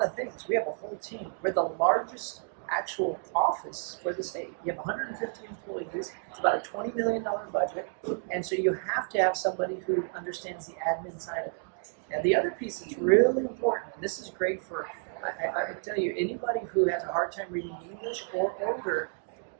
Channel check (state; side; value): silent; left; 57 dB below the other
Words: of things. We have a whole team. We're the largest actual office for the state. You have 150 employees. It's about a $20 million budget. And so you have to have somebody who understands the admin side of it. And the other piece that's really important, and this is great for, I can tell you, anybody who has a hard time reading English or older,